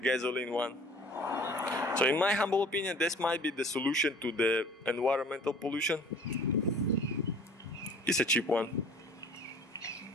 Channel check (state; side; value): normal; both; correlation 0.49